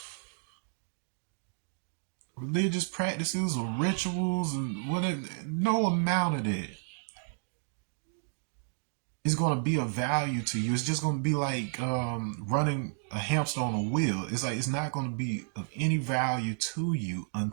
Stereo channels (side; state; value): left; silent; 57 dB below the other